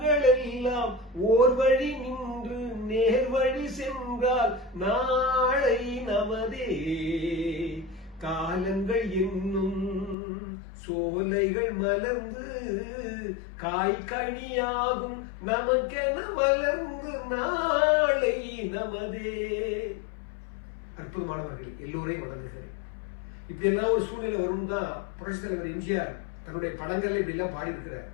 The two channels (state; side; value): drops out; right; at 10.2 s